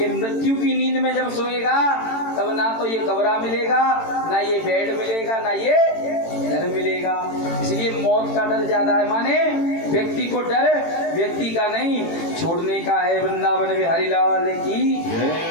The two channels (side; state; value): right; late; 18 ms